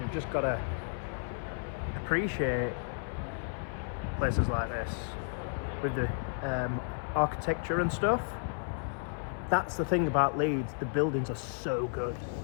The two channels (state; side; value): silent; right; 56 dB below the other